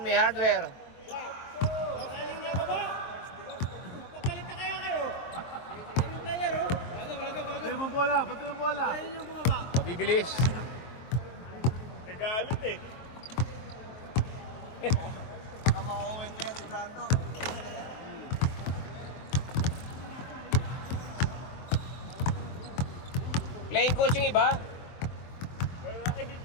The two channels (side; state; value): right; late; 23 ms